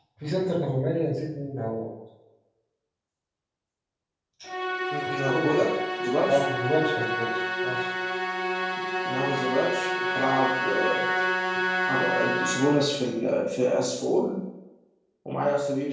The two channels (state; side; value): identical; both; correlation 1.00